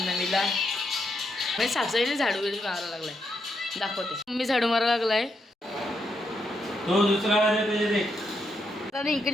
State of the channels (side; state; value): both; normal; correlation 0.81